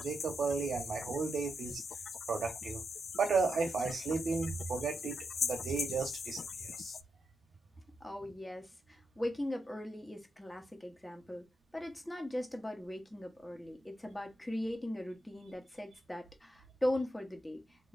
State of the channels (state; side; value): normal; both; correlation 0.85